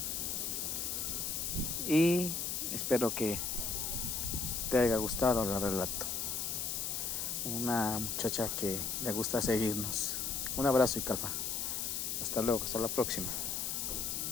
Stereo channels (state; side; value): noise; left; hiss, 1 dB below the sound